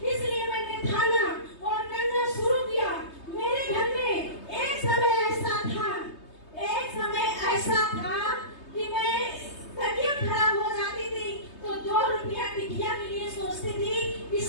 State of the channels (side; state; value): right; late; 3.2 ms